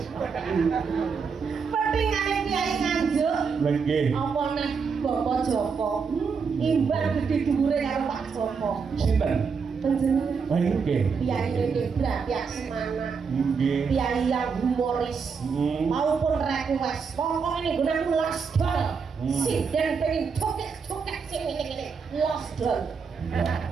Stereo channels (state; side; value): quieter; left; 5.6 dB